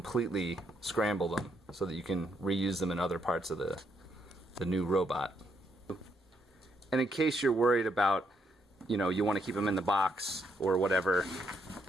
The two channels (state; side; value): normal; both; correlation 0.75